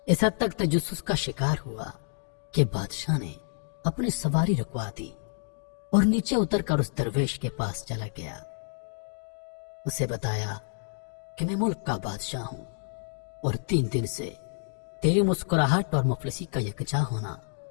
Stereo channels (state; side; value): silent; right; digital silence